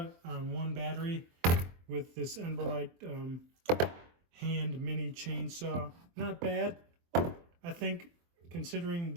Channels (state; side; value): late; left; 23 ms